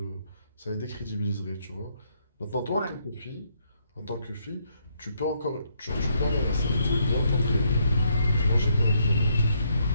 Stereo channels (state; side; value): inverted; both; correlation -0.73